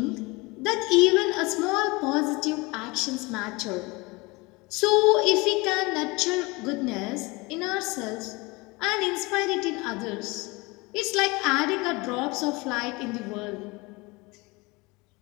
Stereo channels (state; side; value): quieter; right; 24.7 dB